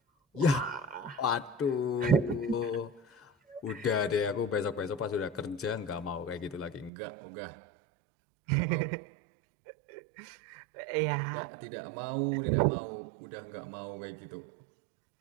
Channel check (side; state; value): left; drops out; at 6.9 s